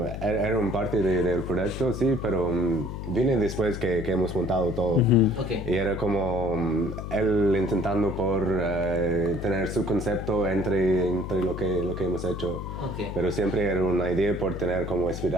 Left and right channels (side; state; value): left; noise; hum, 7 dB below the sound